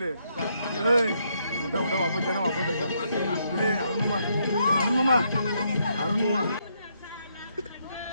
मोठा मोठा वापस त्यांना वापस अरुण मामा अरुण मामा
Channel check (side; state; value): both; inverted; correlation -0.76